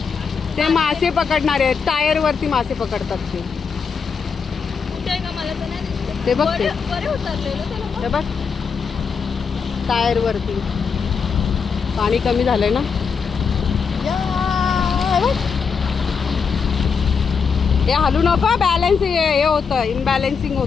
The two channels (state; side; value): quieter; right; 5.8 dB